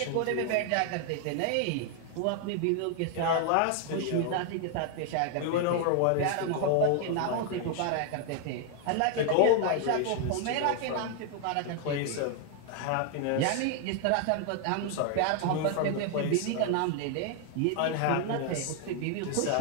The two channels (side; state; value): both; different; correlation 0.00